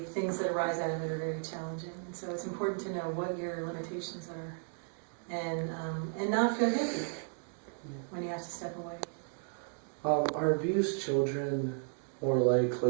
things that arise out of it are very challenging. And so it's important to know what your limitations are, and not feel guilty when you have to step away. Are abused children more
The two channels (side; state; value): left; silent; 55 dB below the other